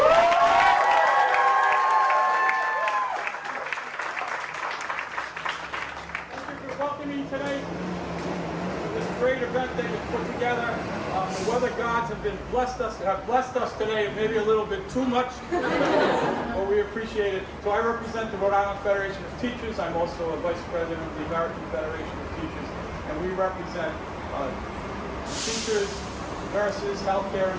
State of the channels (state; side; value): identical; both; correlation 1.00